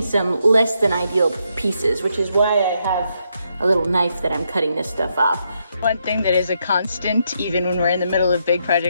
some less than ideal pieces, which is why I have a little knife that I'm cutting this stuff off. One thing that is a constant, even when we're in the middle of big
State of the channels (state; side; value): inverted; both; correlation -0.79